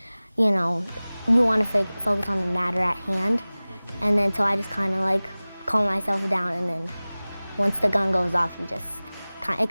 you know, you want to focus on the matter at hand. And then so I just kind of like calm myself down, and then once the gun goes off, it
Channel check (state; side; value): inverted; both; correlation -0.99